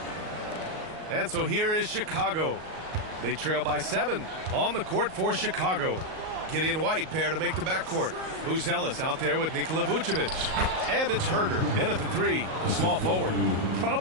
And so here is Chicago. They trail by 7 on the court for Chicago. Gideon White pair to make the backcourt. Buzelis out there with Nikola Vucevic. And it's Herder in at the 3, the small forward.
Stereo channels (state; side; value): late; left; 38 ms